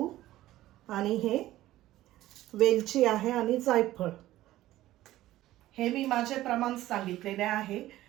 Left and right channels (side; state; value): left; quieter; 15.2 dB